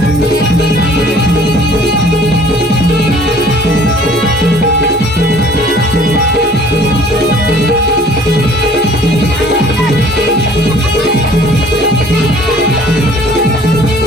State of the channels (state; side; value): normal; both; correlation 0.53